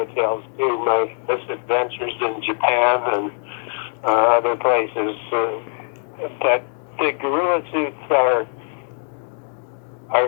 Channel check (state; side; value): silent; right; digital silence